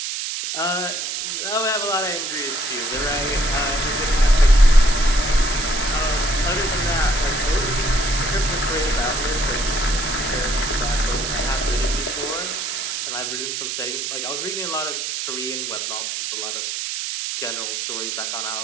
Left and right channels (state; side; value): noise; right; hiss, 3 dB below the sound